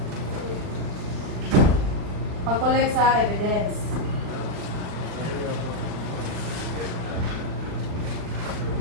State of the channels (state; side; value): late; left; 39 ms